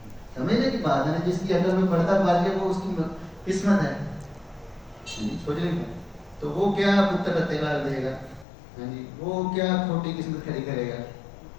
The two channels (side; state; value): right; drops out; at 8.5 s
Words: سمجھنے کی بات ہے نا، جس کی عقل میں پڑتا پار گیا وہ اس کی قسمت ہے. سوچ رہے ہیں تو وہ کیا پتر تیلا دے گا، ہاں جی وہ کیا کھوٹی قسمت کھڑی کرے گا.